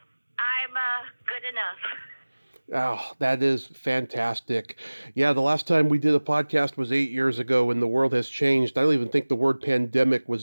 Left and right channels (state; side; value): inverted; both; correlation -1.00